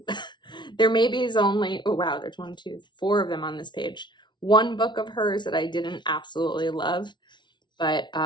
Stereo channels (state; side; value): late; right; 0.22 ms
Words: there maybe is only, oh wow, there's 1, 2, 4 of them on this page. One book of hers that I didn't absolutely love, but